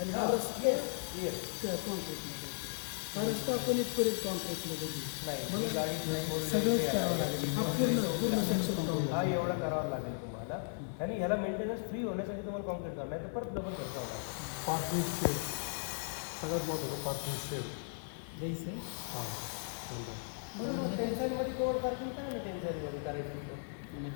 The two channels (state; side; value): silent; right; digital silence